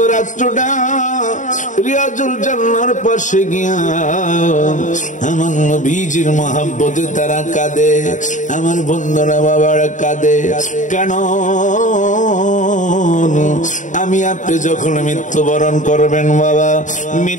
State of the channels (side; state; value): right; late; 0.36 ms